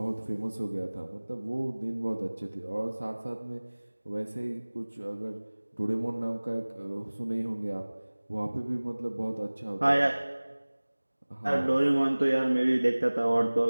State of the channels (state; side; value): inverted; both; correlation -1.00